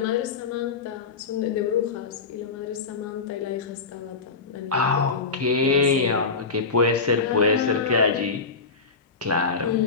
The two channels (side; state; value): right; quieter; 4.5 dB